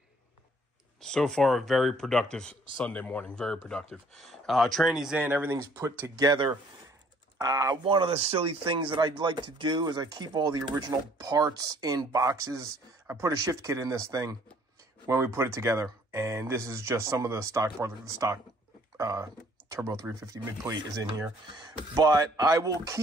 So far, a very productive Sunday morning, very productive. Tranny's in, everything's put together. One of the silly things that I'd like to do is I keep all the original parts in boxes. I put a shift kit in this thing when we put it together, and this is just some of the stock parts. The stock Turbo 350 mid plate is in here, but I will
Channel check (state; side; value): normal; both; correlation 0.60